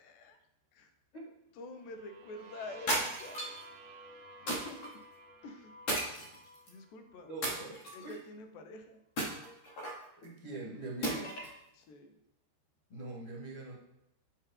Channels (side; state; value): right; late; 13 ms